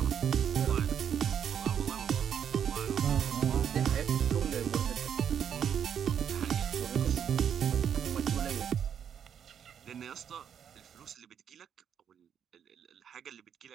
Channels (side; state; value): left; quieter; 8.5 dB